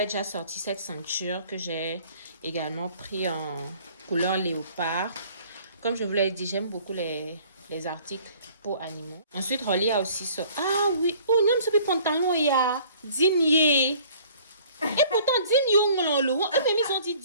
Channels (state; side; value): inverted; both; correlation -0.54